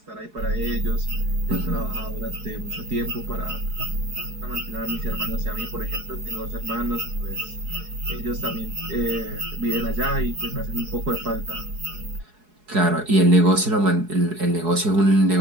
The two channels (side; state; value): left; late; 4.7 ms